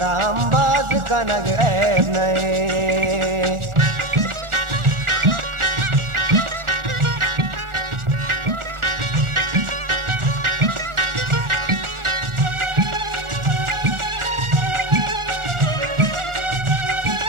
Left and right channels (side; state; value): left; late; 1.4 ms